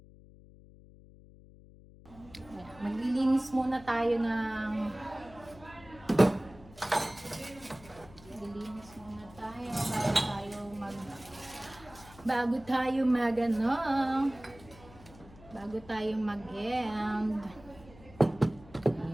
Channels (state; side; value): noise; left; hum, 21 dB below the sound